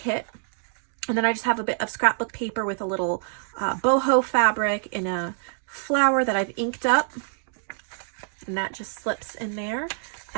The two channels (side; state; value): left; silent; 61 dB below the other